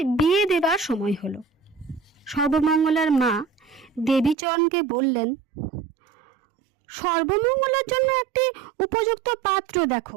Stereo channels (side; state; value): left; drops out; at 4.4 s